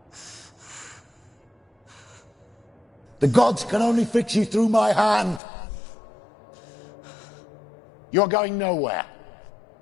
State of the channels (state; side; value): drops out; right; at 5.4 s